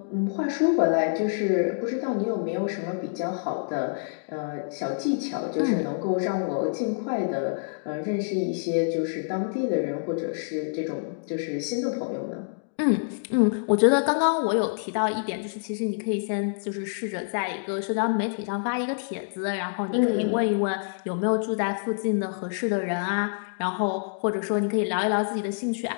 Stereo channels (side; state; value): right; silent; digital silence